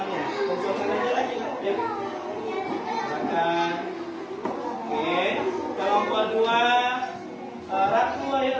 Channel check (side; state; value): both; identical; correlation 1.00